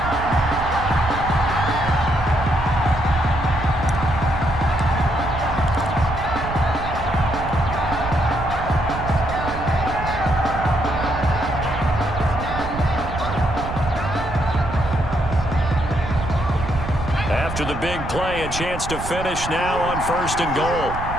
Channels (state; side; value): noise; right; rumble, 8 dB below the sound